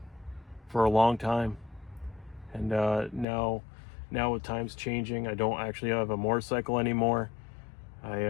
for a long time. And now with times changing, I don't actually have a motorcycle anymore.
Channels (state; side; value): drops out; right; at 3.2 s